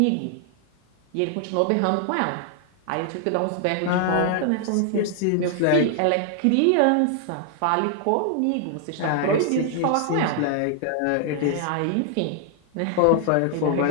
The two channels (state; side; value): different; both; correlation 0.00